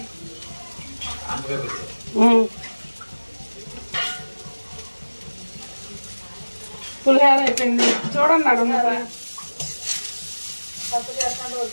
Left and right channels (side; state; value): both; inverted; correlation -1.00